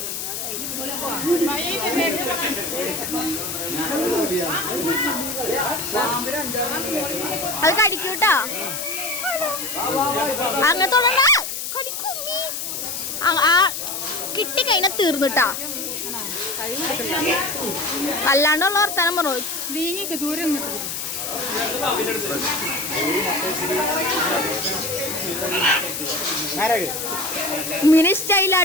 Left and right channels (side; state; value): left; noise; hiss, 4 dB below the sound